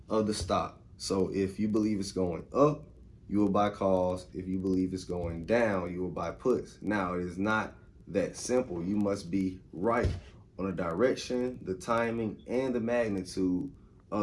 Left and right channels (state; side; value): identical; both; correlation 1.00